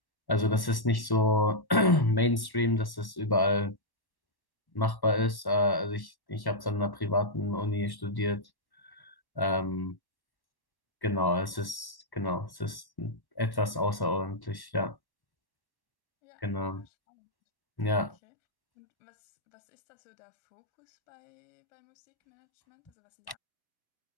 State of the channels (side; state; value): right; late; 1.1 ms